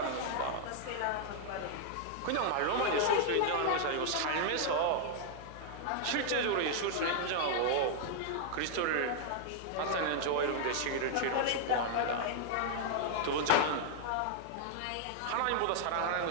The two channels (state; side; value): different; both; correlation -0.01